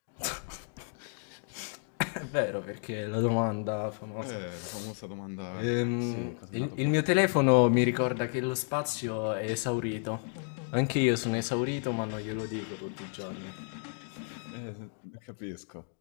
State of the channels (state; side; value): silent; right; 55 dB below the other